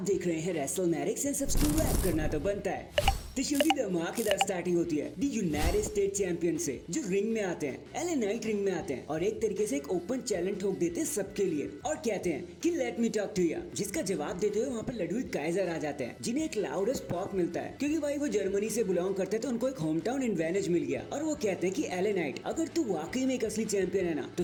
देख रहे हैं रेसलमैनिक्स एंड सब्सक्राइब करना तो बनता है। तो शो की धमाकेदार स्टार्टिंग होती है दी यूनाइटेड स्टेट चैंपियन से जो रिंग में आते हैं, एलए नाइट रिंग में आते हैं और एक तरीके से एक ओपन चैलेंज ठोक देते हैं सबके लिए और कहते हैं कि let me talk to you, जिसका जवाब देते हुए वहाँ पर लडविग काइजर आ जाते हैं जिन्हें एक लाउडेस्ट पॉप मिलता है क्योंकि भाई वो जर्मनी से बिलोंग करते तो उनको एक होम टाउन एडवांटेज मिल गया। और वो कहते हैं कि एलए नाइट अगर तू वाकई में एक असली चैंपियन है ना तो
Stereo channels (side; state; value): both; identical; correlation 1.00